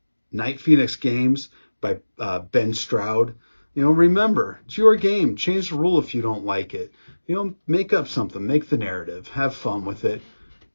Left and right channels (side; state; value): both; inverted; correlation -1.00